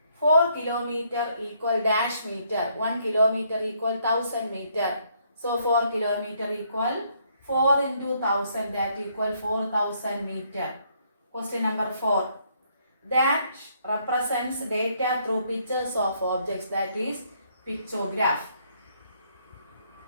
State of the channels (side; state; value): both; inverted; correlation -0.70